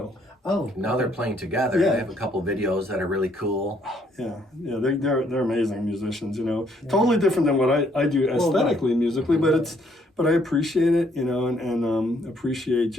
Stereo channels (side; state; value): both; normal; correlation 0.68